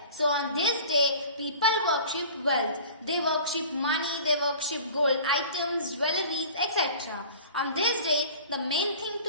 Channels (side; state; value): both; inverted; correlation -0.43